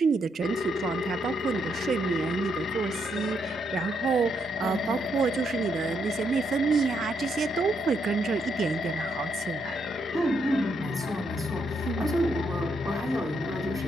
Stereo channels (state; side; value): normal; both; correlation 0.77